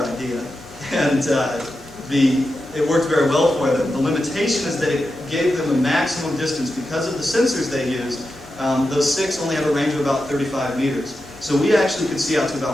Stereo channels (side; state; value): both; normal; correlation 0.89